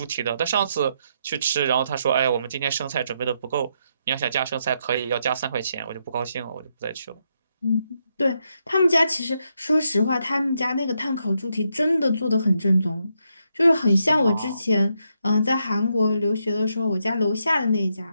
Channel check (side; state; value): both; inverted; correlation -0.80